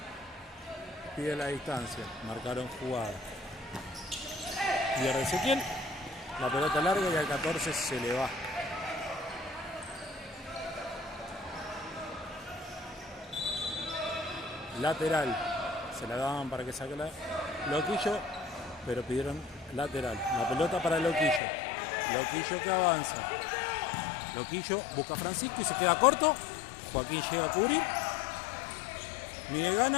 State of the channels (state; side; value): drops out; right; at 21.4 s